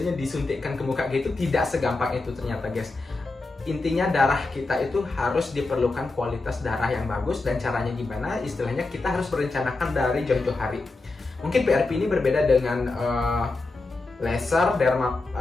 disuntikkan ke muka gitu. Tidak segampang itu ternyata guys. Intinya darah kita itu harus diperlukan kualitas darah yang bagus. Dan caranya gimana? Istilahnya kita harus merencanakan dari jauh-jauh hari. Mungkin PRP ini berbeda dengan laser,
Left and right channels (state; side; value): quieter; right; 3.4 dB